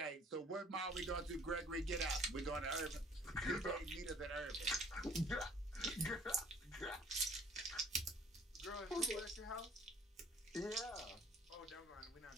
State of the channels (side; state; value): both; normal; correlation 0.54